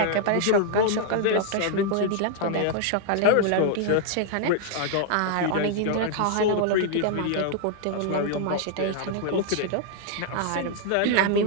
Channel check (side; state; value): both; different; correlation 0.00